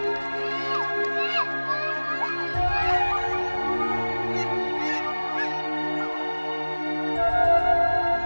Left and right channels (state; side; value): inverted; both; correlation -1.00